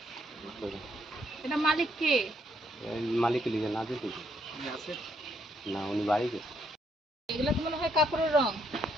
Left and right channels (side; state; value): both; normal; correlation 0.72